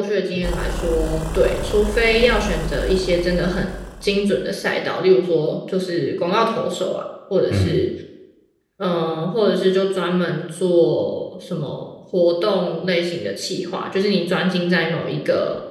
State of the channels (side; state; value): both; identical; correlation 1.00